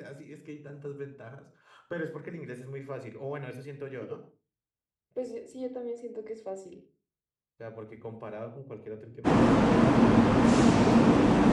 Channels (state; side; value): identical; both; correlation 1.00